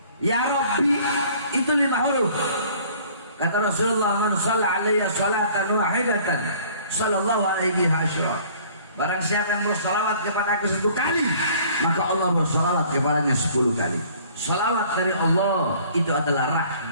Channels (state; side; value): inverted; both; correlation -0.53